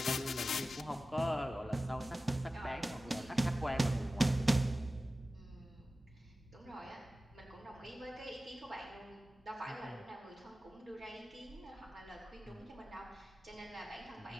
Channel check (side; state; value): both; normal; correlation 0.95